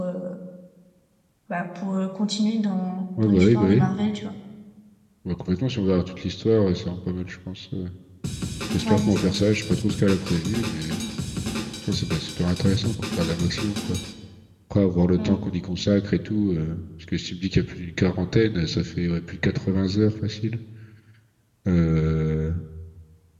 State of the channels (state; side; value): identical; both; correlation 1.00